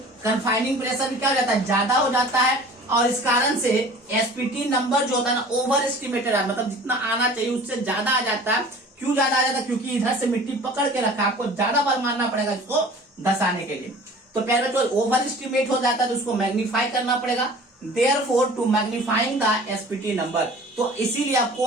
कन्फाइनिंग प्रेशर भी क्या हो जाता है, ज्यादा हो जाता है और इस कारण से एसपीटी नंबर जो होता है ना ओवर एस्टिमेटेड है, मतलब जितना आना चाहिए उससे ज्यादा आ जाता है। क्यों ज्यादा आ जाता है, क्योंकि इधर से मिट्टी पकड़ के रखा, आपको ज्यादा बार मारना पड़ेगा इसको धसाने के लिए। तो पहले जो ओवर एस्टिमेट हो जाता है तो उसको मैग्नीफाई करना पड़ेगा। Therefore to magnifying the SPT number, तो इसीलिए आपको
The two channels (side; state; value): both; normal; correlation 0.44